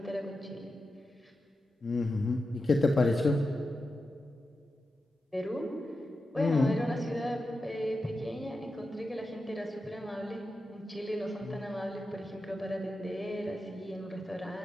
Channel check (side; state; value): both; normal; correlation 0.90